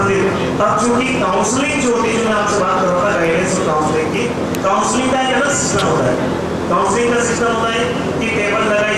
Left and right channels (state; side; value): identical; both; correlation 1.00